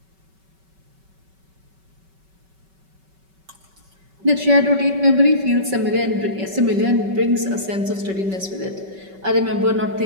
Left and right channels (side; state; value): left; late; 5.3 ms